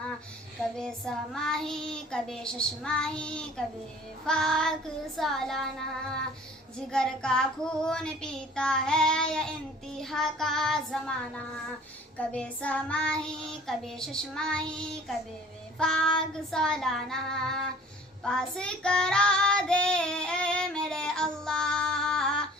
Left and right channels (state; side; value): normal; both; correlation 0.49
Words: کبھی سماہی کبھی ششماہی کبھی وفاق سالانہ، جگر کا خون پیتا ہے انتہا کا زمانہ، کبھی سماہی کبھی ششماہی کبھی وفاق سالانہ، پاس کرا دے اے میرے اللہ،